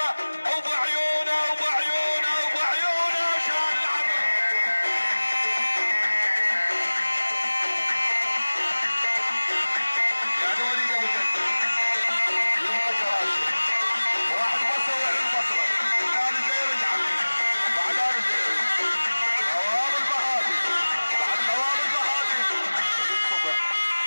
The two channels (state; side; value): inverted; both; correlation -1.00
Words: ابو عيونه ابو عيونه ابو عيونه شال العطر. يعني وليد ابو جدة يبقى جراشه واحد بصر وعين بصره. الثاني زيري يا عمي، بعد انا زيري. خواب البهادي، بعد خواب البهادي وليد صبح